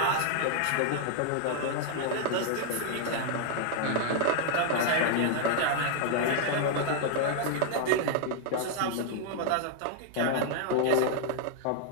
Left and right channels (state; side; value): different; both; correlation 0.00